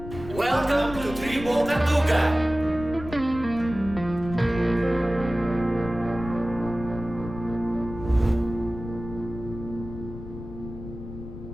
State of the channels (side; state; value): left; noise; rumble, 11 dB below the sound